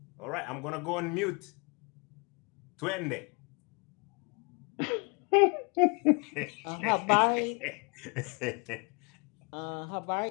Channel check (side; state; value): right; quieter; 33.0 dB